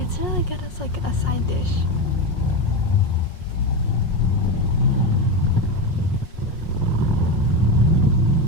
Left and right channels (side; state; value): right; late; 5.5 ms